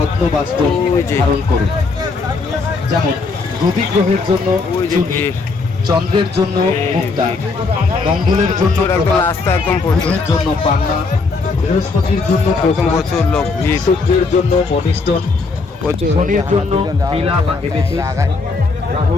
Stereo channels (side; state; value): right; quieter; 4.1 dB